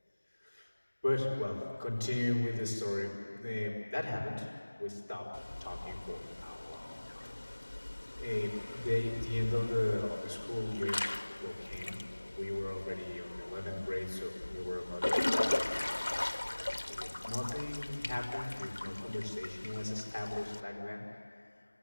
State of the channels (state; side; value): inverted; both; correlation -1.00